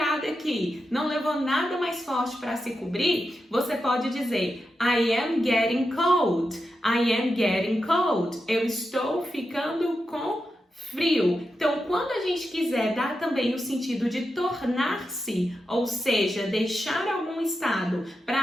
aqui, não levou nada mais forte para se cobrir, você pode dizer I am getting cold. I am getting cold. Eu estou ficando com frio. Então, quando a gente quiser dar também o sentido de tornar-se, ou seja, deixar algum estado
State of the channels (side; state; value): both; normal; correlation 0.88